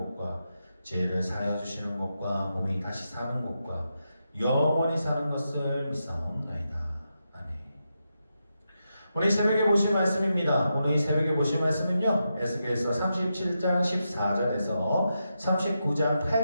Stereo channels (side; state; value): both; inverted; correlation -0.86